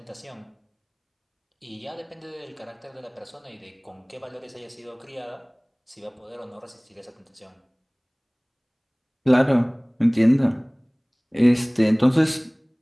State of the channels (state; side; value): identical; both; correlation 1.00